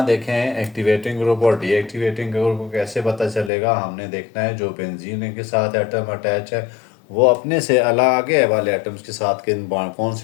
देखें एक्टिवेटिंग ग्रुप और डीएक्टिवेटिंग ग्रुप को कैसे पता चलेगा? हमने देखना है जो बेंजीन रिंग के साथ एटम अटैच है वो अपने से अलग आगे वाले एटम्स के साथ किन बाड कौन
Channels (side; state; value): right; drops out; at 3.5 s